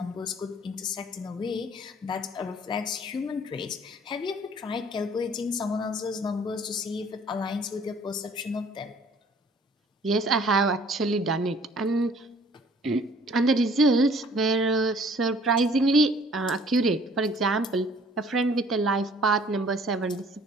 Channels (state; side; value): normal; both; correlation 0.55